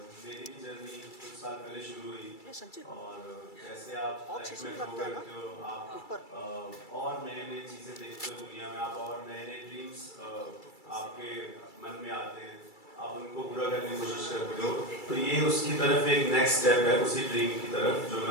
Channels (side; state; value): right; late; 2.3 ms